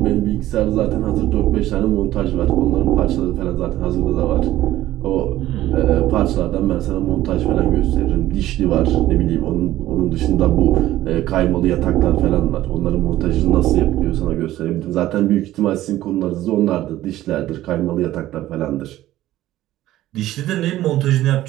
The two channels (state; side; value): quieter; left; 14.7 dB